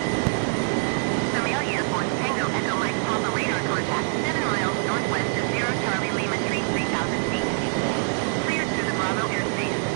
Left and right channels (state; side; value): silent; left; 62 dB below the other